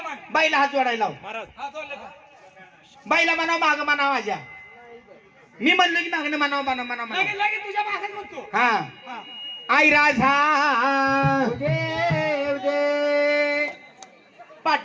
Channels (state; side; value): identical; both; correlation 1.00